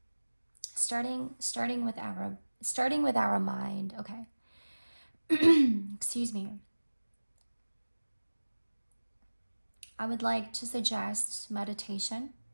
Starting with our mind. Okay. Excuse me. I would like to suggest meditation,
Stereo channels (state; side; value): inverted; both; correlation -1.00